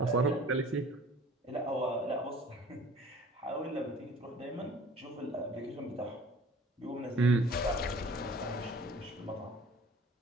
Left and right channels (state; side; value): normal; both; correlation 0.49